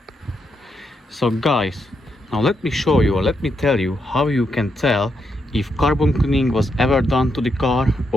So guys, now let me show you, or let me tell you how you can tell if carbon cleaning was ever done to the car,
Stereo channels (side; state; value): both; normal; correlation 0.81